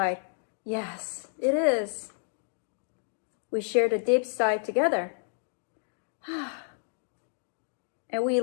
yes, it is. We shared a deep sigh together. And we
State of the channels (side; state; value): right; silent; digital silence